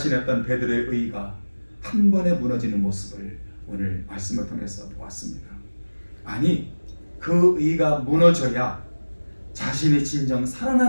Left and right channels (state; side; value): inverted; both; correlation -1.00